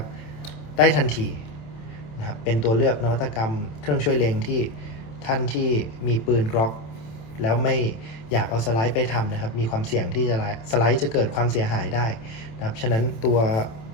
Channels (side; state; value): right; late; 27 ms